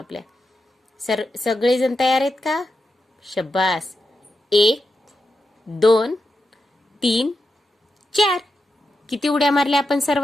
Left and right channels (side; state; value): both; normal; correlation 0.88